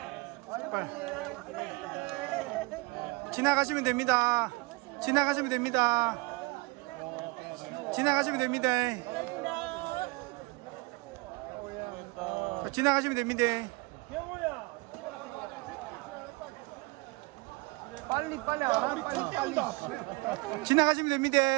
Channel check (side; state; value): left; quieter; 25.1 dB